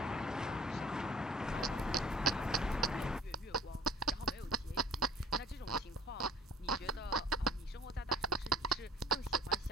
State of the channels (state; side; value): normal; both; correlation 0.49